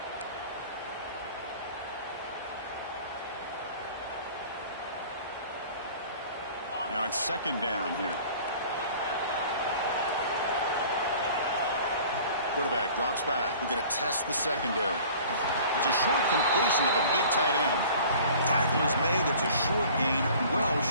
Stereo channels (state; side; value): inverted; both; correlation -0.47